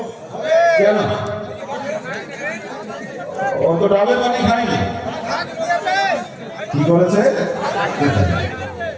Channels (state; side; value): identical; both; correlation 1.00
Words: কেন? ও তো ডাবের পানি খায়নি, কি করেছে?